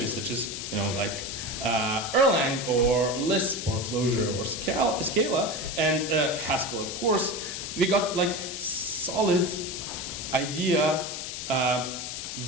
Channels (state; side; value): noise; left; hiss, 6 dB below the sound